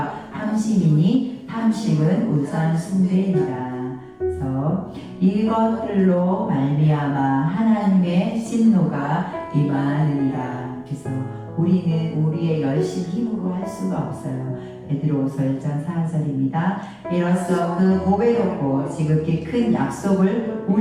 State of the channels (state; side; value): identical; both; correlation 1.00